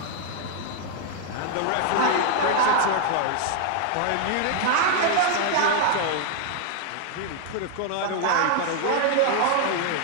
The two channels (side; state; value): both; different; correlation 0.00